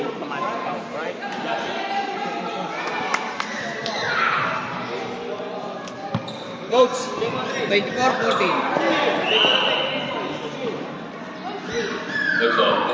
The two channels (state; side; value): identical; both; correlation 1.00